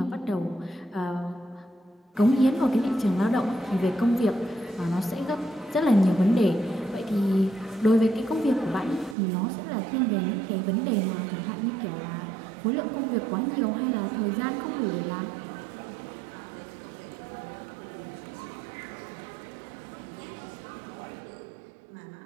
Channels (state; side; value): drops out; left; at 9.2 s